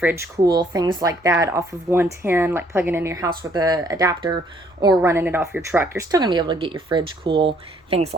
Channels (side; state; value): both; normal; correlation 0.64